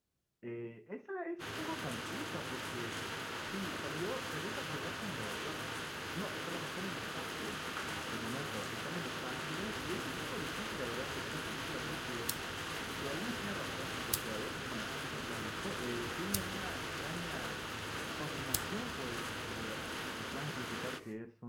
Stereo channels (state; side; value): identical; both; correlation 1.00